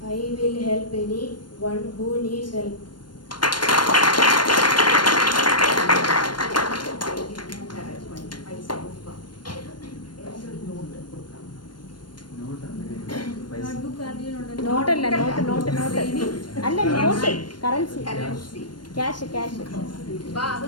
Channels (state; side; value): late; right; 0.71 ms